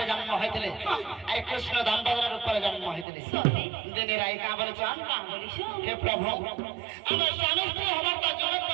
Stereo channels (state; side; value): drops out; left; at 3.1 s